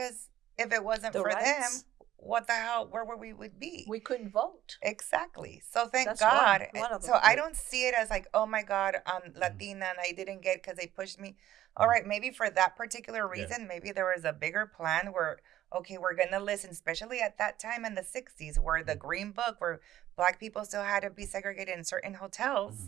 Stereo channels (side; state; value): left; quieter; 13.1 dB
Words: if it wasn't for them, what the hell, where would be? We couldn't vote. Exactly. So thank God. One of so them. I don't see it as like, oh my God, I'm Latina and I didn't get because they pushed me. All right, maybe for that particular reason, maybe there was a bigger plan where, okay, we're going to listen, especially at that time in the 60s, where the Green Book, where Black people still had to be segregated in certain